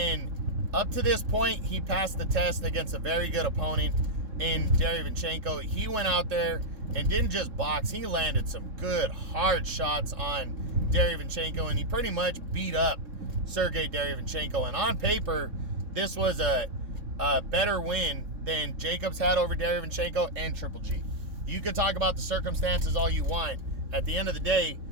up to this point, he passed the test against a very good opponent in Derevyanchenko. He went out there and didn't just box, he landed some good, hard shots on Derevyanchenko, and he pretty much beat up Sergey Derevyanchenko. And on paper, this was a better win than Jacobs had over Derevyanchenko and Triple G. You could talk about the circumstances all you want. At the end of the day,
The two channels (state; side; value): late; left; 3.7 ms